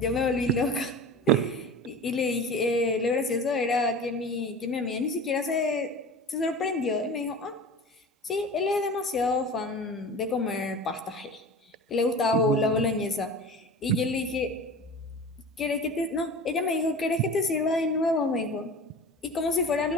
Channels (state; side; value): normal; both; correlation 0.36